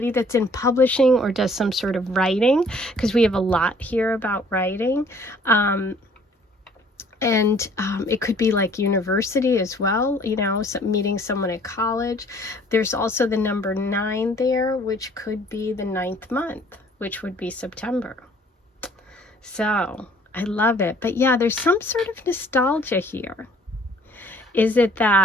that's in publishing or does some sort of writing, because we have a lot here about writing. It could be like university as well, you know, meeting someone at college. There's also the number 9 there, which could be the 9th month, which would be September. So I love it. But yeah, there's some sort of nostalgia here. Is it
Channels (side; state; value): both; normal; correlation 0.57